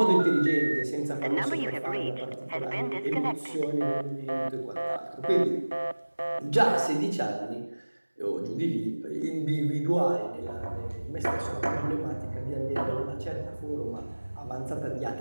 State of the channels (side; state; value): both; inverted; correlation -1.00